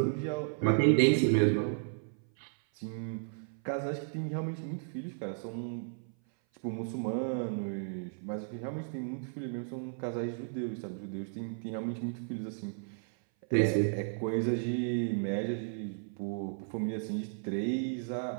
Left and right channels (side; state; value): left; silent; 55 dB below the other